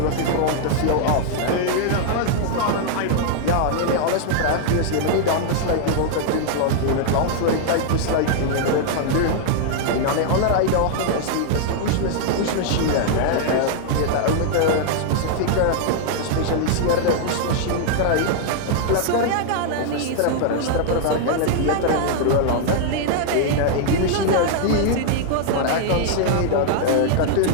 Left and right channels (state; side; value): different; both; correlation -0.01